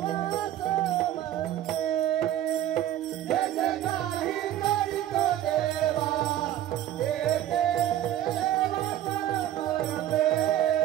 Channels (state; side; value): quieter; left; 12.4 dB